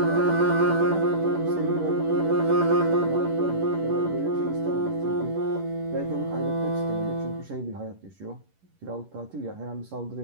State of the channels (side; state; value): left; late; 11 ms